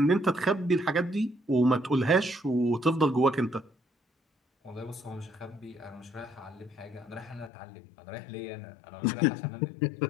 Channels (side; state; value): right; drops out; at 7.5 s